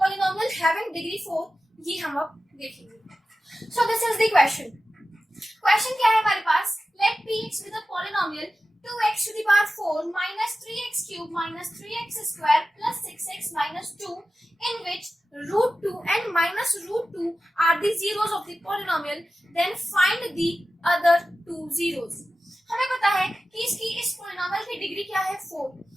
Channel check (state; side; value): normal; both; correlation 0.94